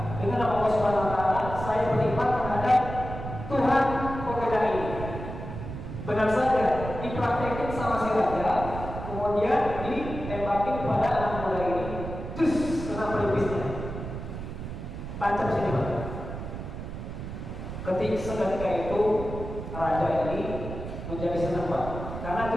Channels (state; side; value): noise; right; rumble, 8 dB below the sound